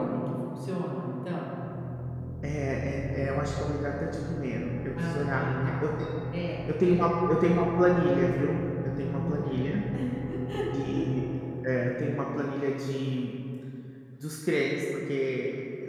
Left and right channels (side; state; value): both; identical; correlation 1.00